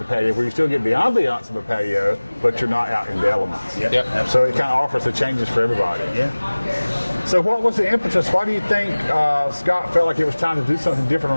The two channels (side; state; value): both; inverted; correlation -1.00